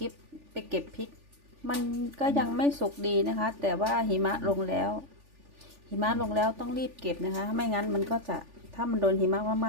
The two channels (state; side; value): late; left; 3.4 ms